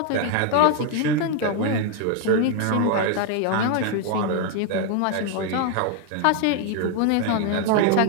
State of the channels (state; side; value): different; both; correlation 0.01